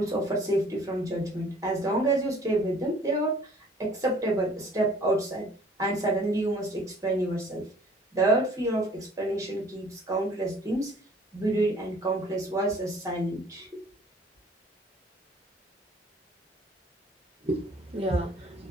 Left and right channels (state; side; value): normal; both; correlation 0.53